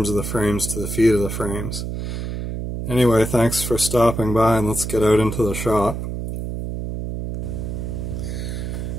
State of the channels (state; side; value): noise; right; hum, 5 dB below the sound